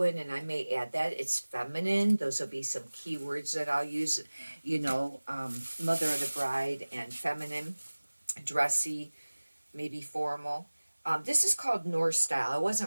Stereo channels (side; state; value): both; inverted; correlation -1.00